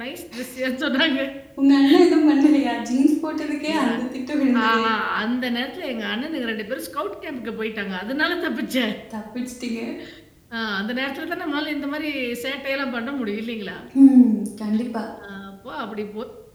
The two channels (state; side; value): identical; both; correlation 1.00